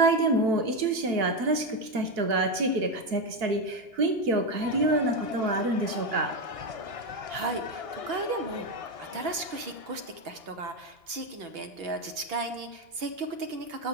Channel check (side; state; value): left; late; 2.8 ms